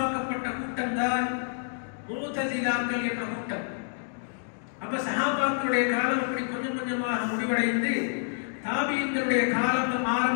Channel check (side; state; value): right; silent; digital silence